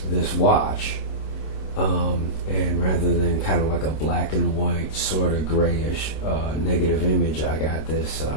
this watch. And rather than kind of like a black and white, sort of grayish negative image, I got this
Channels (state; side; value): late; right; 26 ms